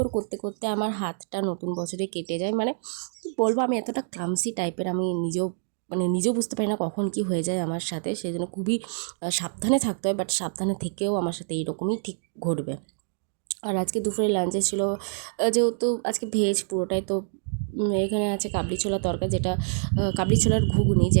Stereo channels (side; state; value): left; silent; digital silence